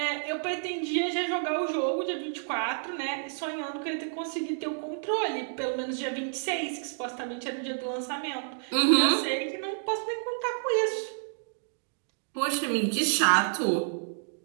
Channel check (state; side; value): silent; left; digital silence